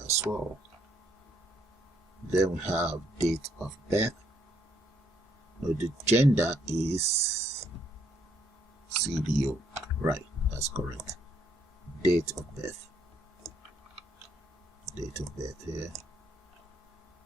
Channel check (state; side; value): normal; both; correlation 0.70